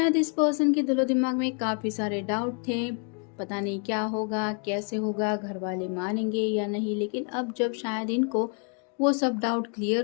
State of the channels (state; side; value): quieter; right; 38.6 dB